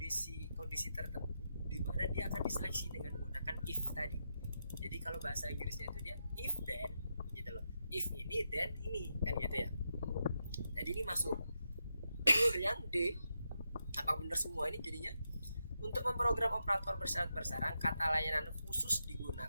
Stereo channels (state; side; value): inverted; both; correlation -0.85